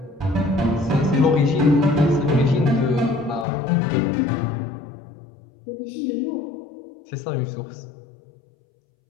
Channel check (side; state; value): right; drops out; at 3.5 s